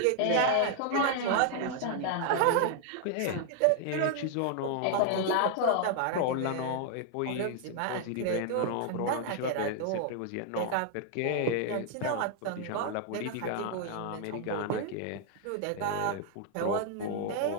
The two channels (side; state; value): both; different; correlation 0.00